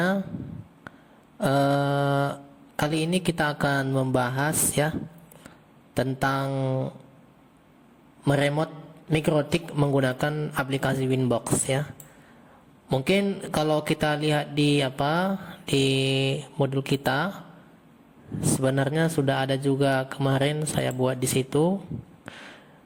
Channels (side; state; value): both; identical; correlation 1.00